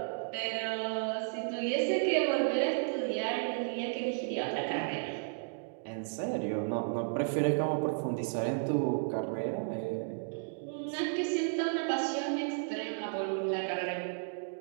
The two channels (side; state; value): left; silent; digital silence